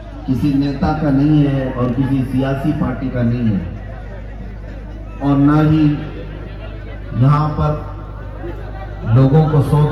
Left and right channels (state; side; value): identical; both; correlation 1.00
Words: کسی نیتا کا نہیں ہے اور کسی سیاسی پارٹی کا نہیں ہے، اور نہ ہی یہاں پر لوگوں کو